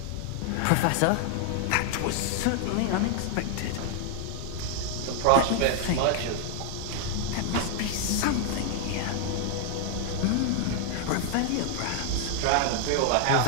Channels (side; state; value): both; different; correlation 0.00